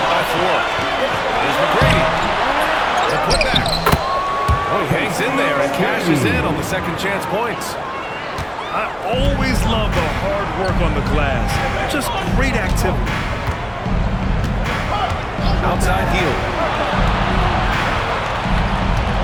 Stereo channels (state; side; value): identical; both; correlation 1.00